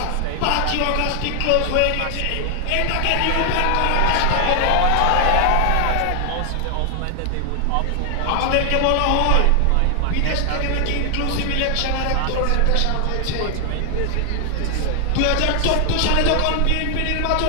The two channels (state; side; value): different; both; correlation 0.00